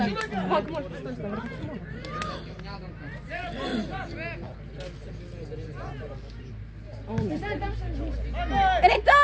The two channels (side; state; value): both; identical; correlation 1.00